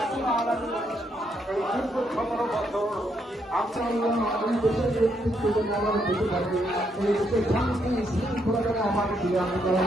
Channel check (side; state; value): both; normal; correlation 0.76